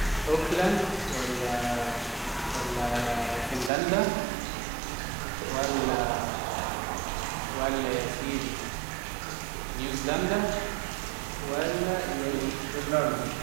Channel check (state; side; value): drops out; left; at 3.7 s